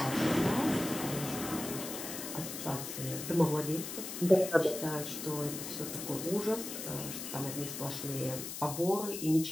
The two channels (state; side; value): noise; left; hiss, 7 dB below the sound